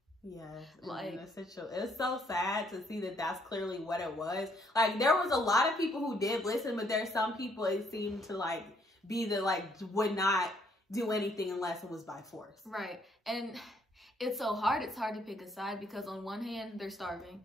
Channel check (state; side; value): normal; both; correlation 0.68